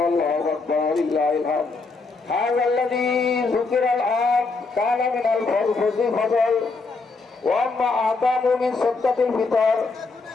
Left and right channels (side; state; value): right; quieter; 4.0 dB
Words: الله أكبر ولله الحمد هذا الذي ذكر الآن كان من الفضل وأما أعظم من سكة الفطر